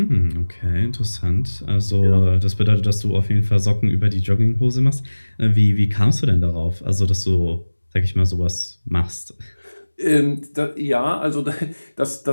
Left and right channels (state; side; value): inverted; both; correlation -1.00